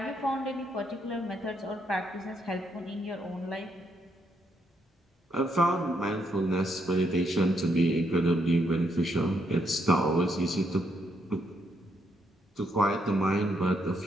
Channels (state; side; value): normal; both; correlation 0.75